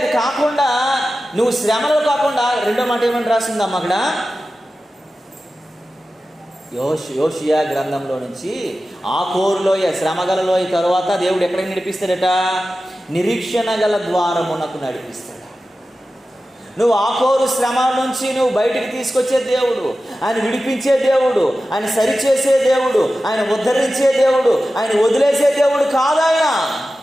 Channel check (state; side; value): normal; both; correlation 0.94